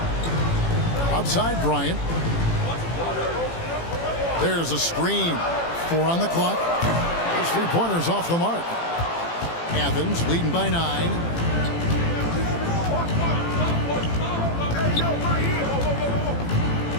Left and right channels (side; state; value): right; late; 18 ms